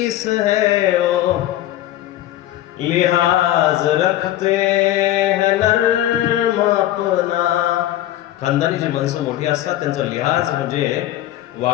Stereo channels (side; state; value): right; quieter; 13.9 dB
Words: है ओ लिहाज रखते हैं नर्म अपना. खानदानी जी माणसं मोठी असतात त्यांचा लिहाज म्हणजे